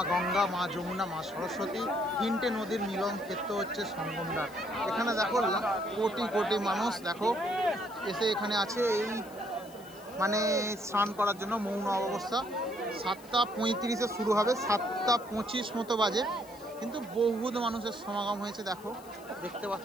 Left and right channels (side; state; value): left; noise; hiss, 22 dB below the sound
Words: গঙ্গা, মা যমুনা, মা সরস্বতী, 3টে নদীর মিলন ক্ষেত্র হচ্ছে সঙ্গম দ্বার। এখানে দেখো কোটি কোটি মানুষ দেখো এসে এখানে আছে, এই মানে স্নান করার জন্য। মৌন অবস্থা 7:35-এ শুরু হবে, 7:25 মতো বাজে, কিন্তু বহুত মানুষের সমাগম হয়েছে দেখো, দেখতে